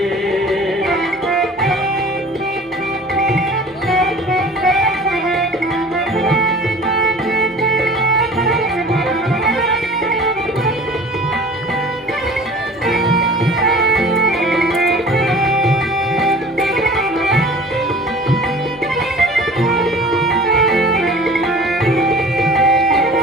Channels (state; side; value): normal; both; correlation 0.43